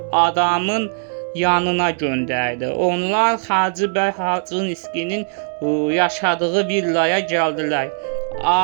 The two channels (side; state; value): left; silent; digital silence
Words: adamın yanına göndərdi. Onlar Hacı bəy Xaçınskinin yaşadığı villaya gəldilər.